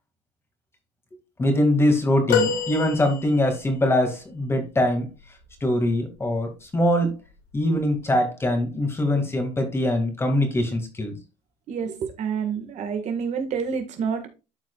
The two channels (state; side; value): normal; both; correlation 0.71